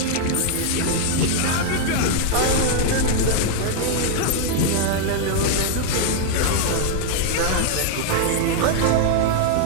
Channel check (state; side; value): different; both; correlation 0.00